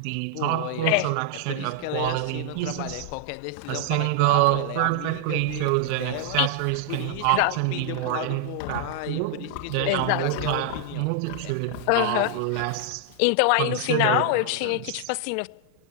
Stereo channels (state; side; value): different; both; correlation 0.00